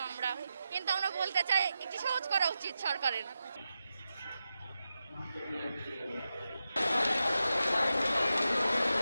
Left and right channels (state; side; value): inverted; both; correlation -0.90